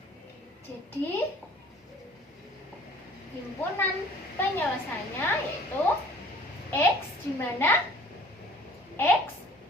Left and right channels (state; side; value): normal; both; correlation 0.50